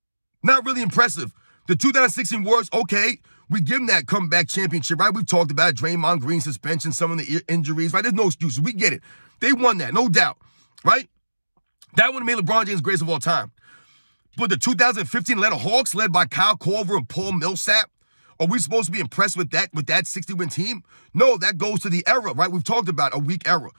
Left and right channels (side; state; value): both; inverted; correlation -1.00